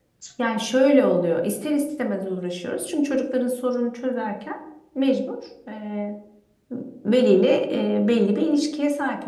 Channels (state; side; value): identical; both; correlation 1.00